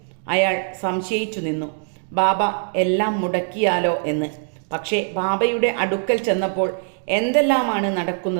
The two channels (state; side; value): silent; left; digital silence